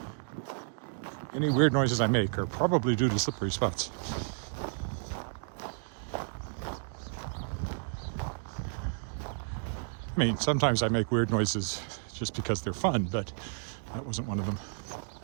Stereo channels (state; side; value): silent; left; digital silence